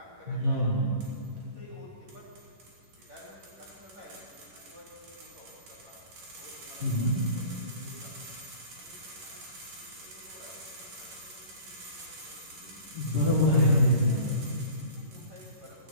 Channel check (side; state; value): left; late; 11 ms